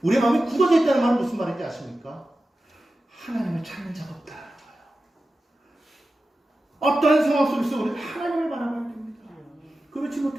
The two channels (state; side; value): normal; both; correlation 0.94